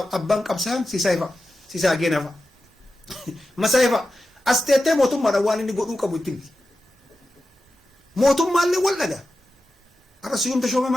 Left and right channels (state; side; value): normal; both; correlation 0.92